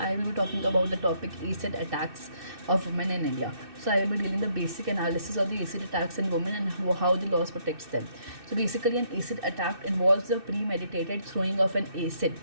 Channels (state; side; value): late; left; 2.6 ms